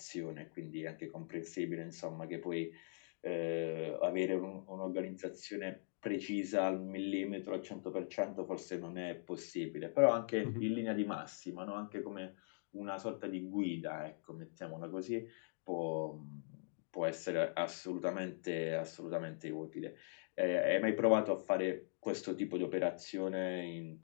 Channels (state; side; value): silent; right; digital silence